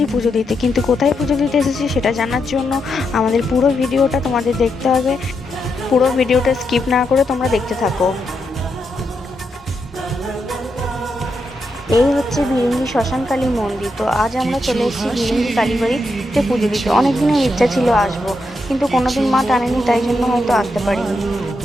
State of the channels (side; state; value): both; normal; correlation 0.83